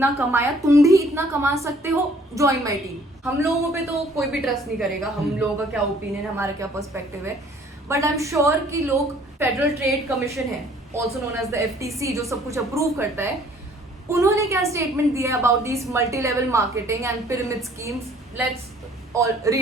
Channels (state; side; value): normal; both; correlation 0.57